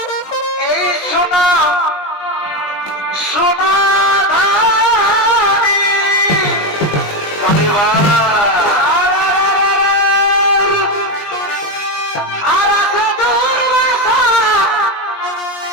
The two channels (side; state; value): right; late; 20 ms